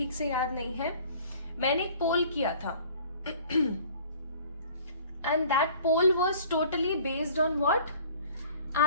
से याद नहीं है, मैंने एक पोल किया था and that poll was totally based on what,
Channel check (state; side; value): inverted; both; correlation -0.50